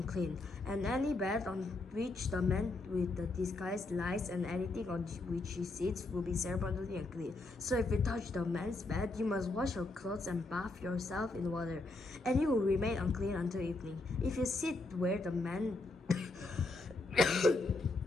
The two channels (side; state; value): right; quieter; 3.1 dB